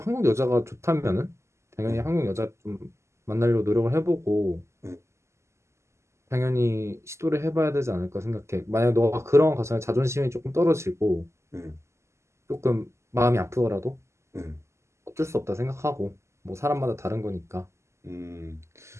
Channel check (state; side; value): late; left; 0.13 ms